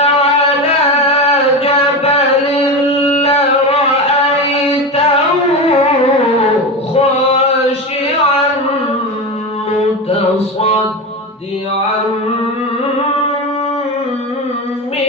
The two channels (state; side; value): normal; both; correlation 0.21